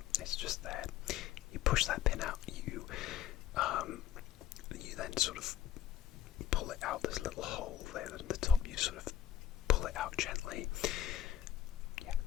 It's just there. You push that pin out, you then sort of pull it out. There's a little hole there at the top. You sort of pull it out gently. Yeah,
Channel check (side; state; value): right; quieter; 11.4 dB